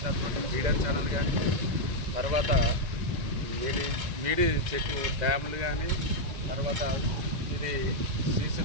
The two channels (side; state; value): left; late; 1.9 ms